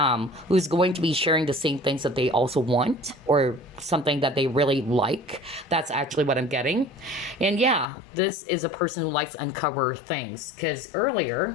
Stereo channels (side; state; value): right; drops out; at 7.9 s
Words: who's going to be sharing the same things that they also want or something that they really like. That's actually what I'm getting. And yeah, this is a person who likes to uncover things. Because